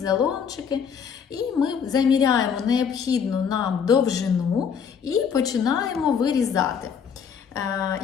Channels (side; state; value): right; quieter; 7.0 dB